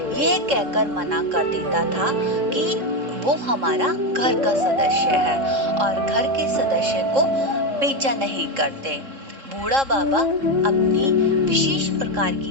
यह कहकर मना कर देता था कि वो हमारा घर का सदस्य है और घर के सदस्य को बेचा नहीं करते। बूढ़ा बाबा अपनी विशेष प्रकार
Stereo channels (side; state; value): left; late; 3.7 ms